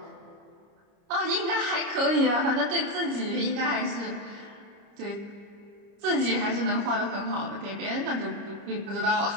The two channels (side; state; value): left; late; 30 ms